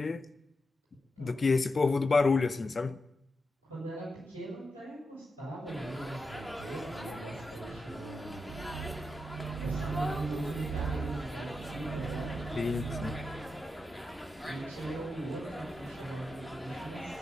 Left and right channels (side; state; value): both; normal; correlation 0.88